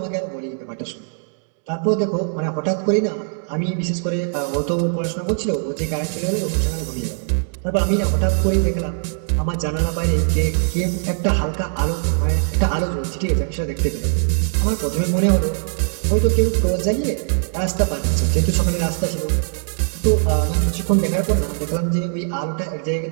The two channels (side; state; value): left; silent; digital silence